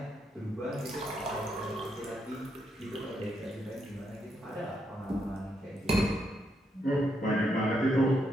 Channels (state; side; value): normal; both; correlation 0.79